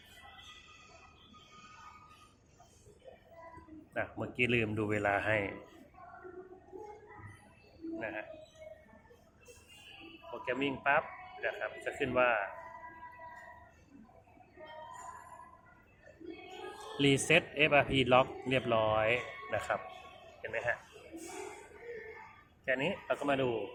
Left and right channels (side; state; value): both; identical; correlation 1.00